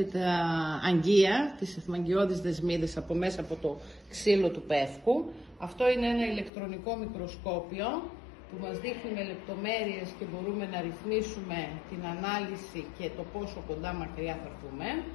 τα αγγεία, τις εθμαγγιώδεις δεσμίδες από μέσα από το ξύλο του πεύκου. Αυτό είναι ένα ηλεκτρονικό μικροσκόπιο που μας δείχνει με λεπτομέρειες και μπορούμε να ρυθμίσουμε την ανάλυση και το πόσο κοντά μακριά θα έρθουμε.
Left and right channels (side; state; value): right; drops out; at 6.5 s